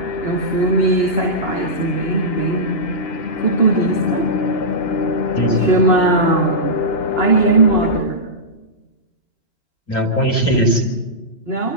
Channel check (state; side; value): late; right; 2.7 ms